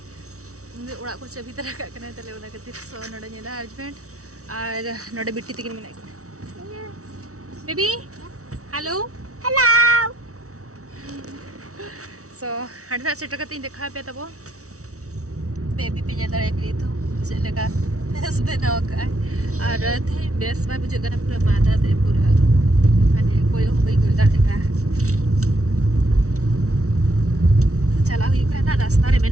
ओड़ा को चबी तरह का कना तले ओना कति सो नडे नेला हस्बैंड और नडे बिट्टी तकिन मिना बेबी हेलो हेलो सो हडा सेट कति देखा पे तबो बेबी पे ज्यादा एक तो चले का बेस बनाओ का और थे बेस में बुझे करना पूरा मादा दे पूरा माने कोई हो गई गुलदा देखा चला हुई का ना रास्ता रे में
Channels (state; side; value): late; left; 0.65 ms